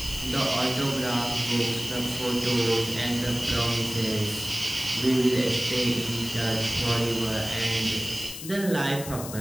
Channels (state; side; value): noise; left; hiss, 10 dB below the sound